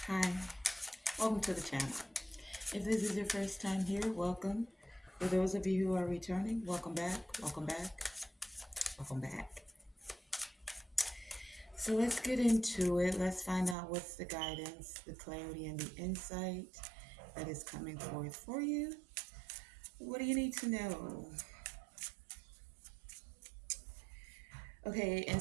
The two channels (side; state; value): left; drops out; at 13.8 s